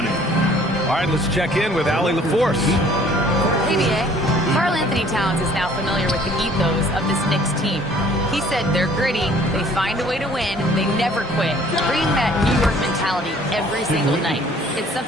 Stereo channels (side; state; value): both; normal; correlation 0.56